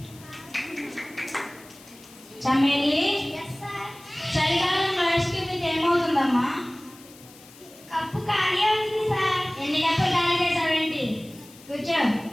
Chameli, yes sir. చలికాలంలో ఐస్ క్రీమ్ తింటే ఏమవుతుందమ్మా? కప్పు ఖాళీ అవుతుంది సార్. ఎన్ని కప్పులు ఖాళీ చేసావేంటి? కూర్చో.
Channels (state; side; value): noise; left; hiss, 22 dB below the sound